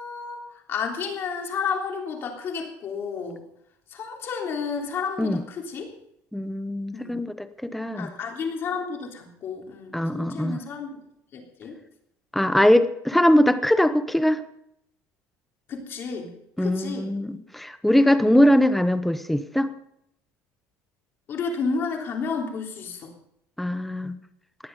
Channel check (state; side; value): normal; both; correlation 0.91